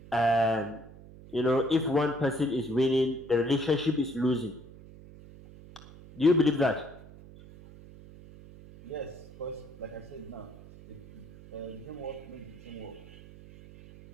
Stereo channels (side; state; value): right; noise; hum, 18 dB below the sound